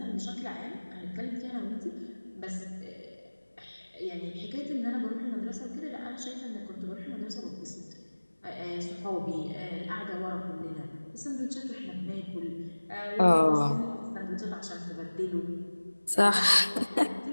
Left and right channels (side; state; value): both; inverted; correlation -1.00